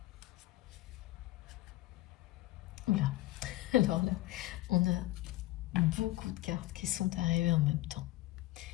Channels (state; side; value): quieter; right; 17.5 dB